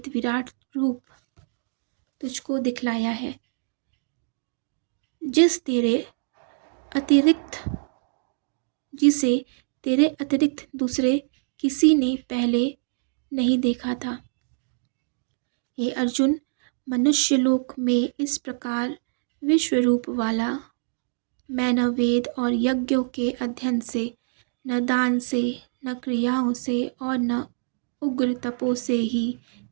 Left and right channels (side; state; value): left; silent; digital silence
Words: विराट रूप तुझको दिखलाया है, अतिरिक्त जिसे तेरे अतिरिक्त दूसरे किसी ने पहले नहीं देखा था। हे अर्जुन, मनुष्यलोक में इस प्रकार विश्व रूप वाला मैं न वेद और यज्ञों के अध्ययन से, न दान से, न क्रियाओं से और न उग्र तपो से ही